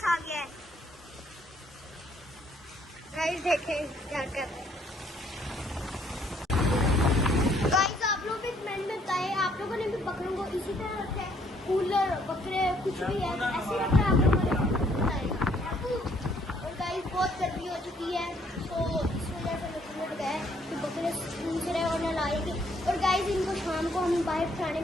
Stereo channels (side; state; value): both; normal; correlation 0.66